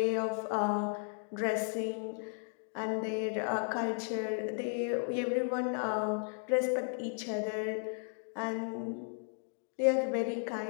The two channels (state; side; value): silent; right; 55 dB below the other